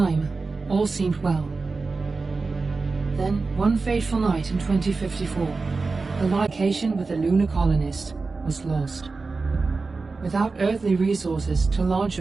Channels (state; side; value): quieter; left; 4.0 dB